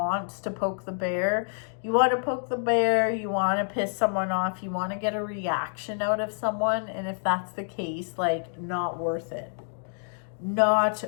to poke the bear. You want to poke the bear, you want to piss someone off, you want to get a reaction out of someone, and if that's the case, like, not worth it.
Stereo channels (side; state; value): right; silent; digital silence